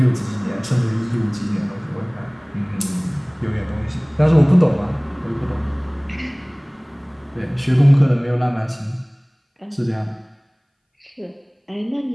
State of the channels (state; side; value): identical; both; correlation 1.00